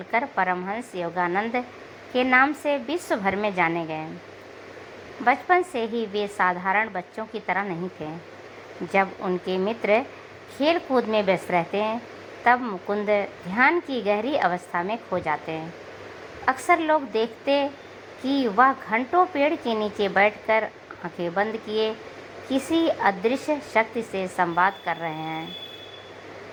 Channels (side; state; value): both; identical; correlation 1.00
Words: परमहंस योगानंद के नाम से विश्व भर में जाने गए। बचपन से ही वे साधारण बच्चों की तरह नहीं थे। जब उनके मित्र खेल कूद में व्यस्त रहते हैं, तब मुकुंद ध्यान की गहरी अवस्था में खो जाते हैं। अक्सर लोग देखते कि वह घंटों पेड़ के नीचे बैठकर आंखें बंद किए किसी अदृश्य शक्ति से संवाद कर रहे हैं।